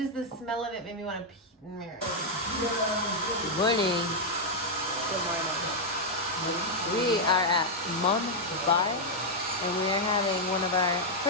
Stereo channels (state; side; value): normal; both; correlation -0.02